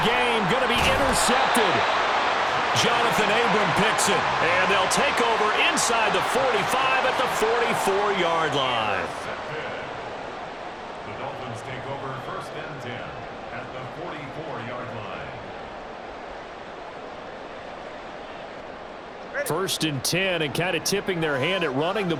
game going to be intercepted. Jonathan Abram picks it, and they'll take over inside the 45 at the 44-yard line. The Dolphins take over first and 10 at the 44-yard line. First and 10, and kind of tipping their hand at running the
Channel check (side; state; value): both; identical; correlation 1.00